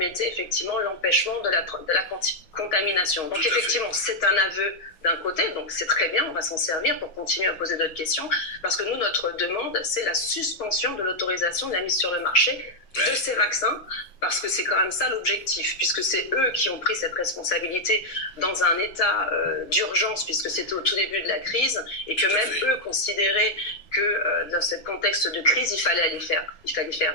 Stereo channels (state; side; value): late; right; 6.3 ms